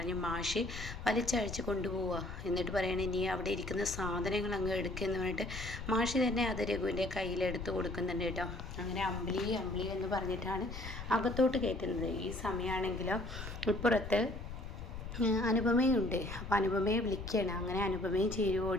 മാഷ് വലിച്ചഴിച്ച് കൊണ്ടുപോവുക. എന്നിട്ട് പറയണേ, നീ അവിടെ ഇരിക്കുന്ന സാധനങ്ങൾ അങ്ങ് എടുക്കുമെന്ന് പറഞ്ഞിട്ട് മാഷി തന്നെ അത് രഘുവിൻ്റെ കയ്യിലെടുത്ത് കൊടുക്കുന്നുണ്ട് കേട്ടോ. അങ്ങനെ അമ്പിളി അമ്പിളി എന്ന് പറഞ്ഞിട്ടാണ് അകത്തോട്ട് കയറ്റുന്നത്. ഈ സമയമാണെങ്കിലോ ഇപ്പുറത്ത് അനുപമയുണ്ട്. അപ്പോൾ അനുപമയെ വിളിക്കുകയാണ്. അങ്ങനെ അനുപമയും ചേരും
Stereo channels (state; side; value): noise; left; rumble, 8 dB below the sound